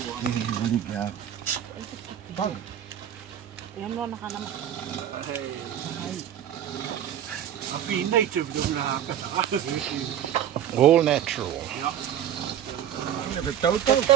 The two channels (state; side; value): quieter; left; 10.1 dB